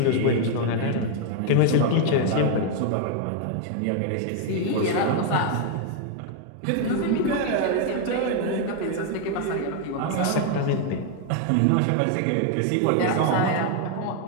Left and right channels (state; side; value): different; both; correlation 0.01